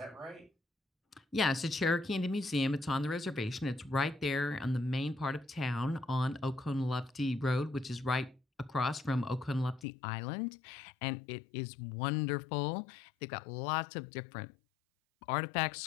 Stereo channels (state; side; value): drops out; right; at 9.9 s